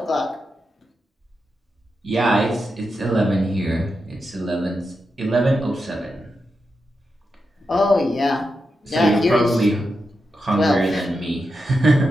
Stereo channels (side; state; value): both; normal; correlation 0.87